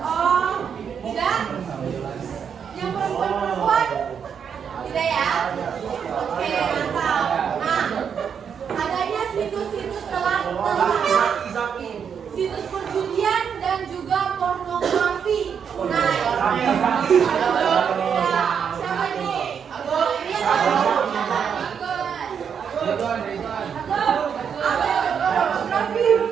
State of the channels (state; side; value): quieter; left; 7.3 dB